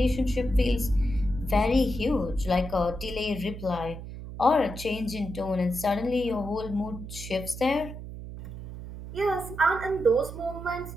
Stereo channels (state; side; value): noise; right; hum, 10 dB below the sound